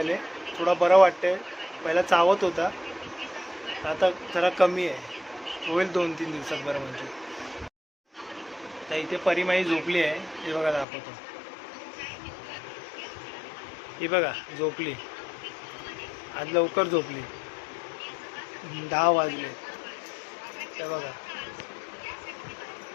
थोडा बरं वाटतंय. पहिला चावत होता, आता जरा कमी आहे. होईल 2-3 दिवसात बरं म्हणजे. तर इथे परिमाई झोपली आहे, हे बघा दाखवतो. ही बघा झोपली, आज लवकर झोपली. 10 वाजले. ते बघा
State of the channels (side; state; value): right; drops out; at 10.9 s